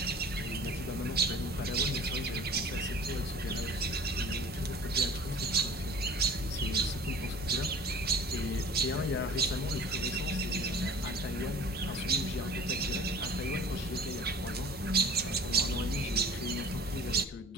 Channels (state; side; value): normal; both; correlation 0.46